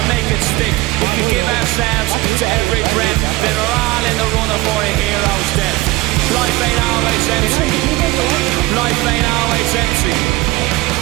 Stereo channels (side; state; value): left; quieter; 20.9 dB